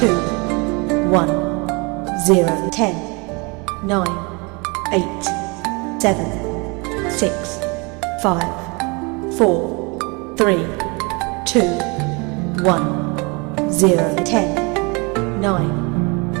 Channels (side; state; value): left; quieter; 29.4 dB